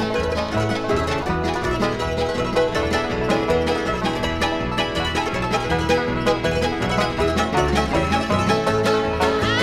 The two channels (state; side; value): identical; both; correlation 1.00